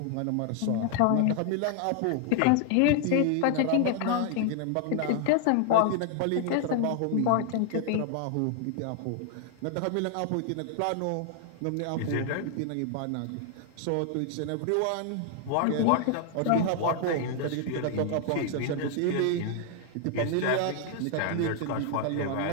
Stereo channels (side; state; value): both; different; correlation 0.00